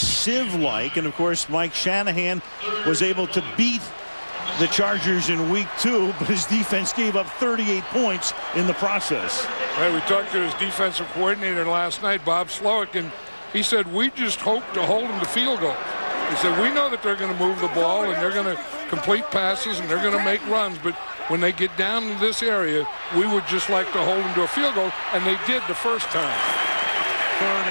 and of course Mike Shanahan was able to beat the Chargers in week 2, but his defense gave up 38 points in the process. Right, we talked to his defensive coordinator last night, Bob Slowick, and he said, we just hope to hold them to field goals. He said, we know that they're going to move the ball and they're going to complete passes and they're going to make runs, but when they get down to this area, we would just like to hold them to a field goal, and they did the first time. 3rd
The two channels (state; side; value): inverted; both; correlation -1.00